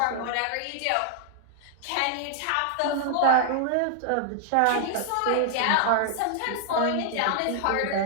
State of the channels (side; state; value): both; different; correlation -0.01